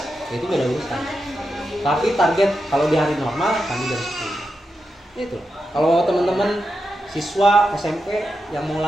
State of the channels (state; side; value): normal; both; correlation 0.88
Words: itu beda urusan. Tapi target kalau di hari normal kami jam 10. Itu. Kalau teman-teman siswa SMP yang mau